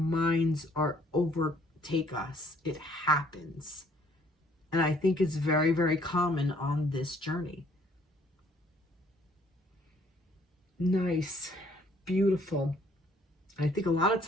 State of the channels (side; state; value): both; normal; correlation 0.62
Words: overtake us. It happens. And I think it's very, very common on this journey. Nice. Beautiful. I think a lot of